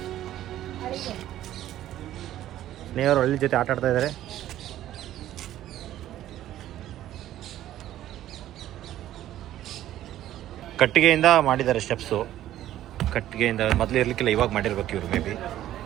ಸ್ನೇಹಿತರು ಹಳ್ಳಿ ಜೊತೆ ಆಟ ಆಡ್ತಾ ಇದ್ದಾರೆ. ಕಟ್ಟಿಗೆಯಿಂದ ಮಾಡಿದ್ದಾರೆ ಸ್ಟೆಪ್ಸು. ಕಟ್ಟಿಗೆಯಿಂದ ಮೊದಲು ಇರಲಿಕ್ಕಿಲ್ಲ, ಇವಾಗ ಮಾಡಿರ್ಬೇಕು ಇವರು ಮೇ ಬಿ.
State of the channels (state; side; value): quieter; left; 13.0 dB